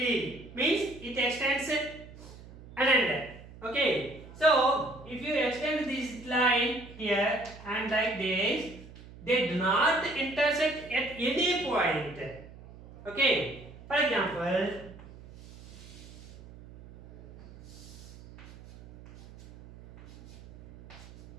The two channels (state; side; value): noise; right; hum, 18 dB below the sound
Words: means it extends an end. Okay, so if you extend this line here and like this, they do not intersect at any point. Okay, for example,